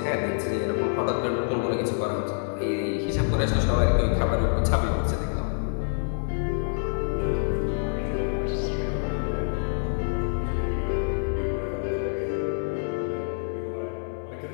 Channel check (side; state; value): right; silent; digital silence